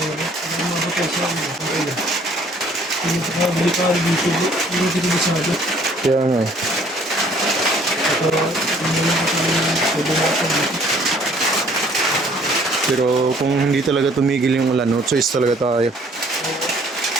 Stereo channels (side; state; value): both; normal; correlation 0.58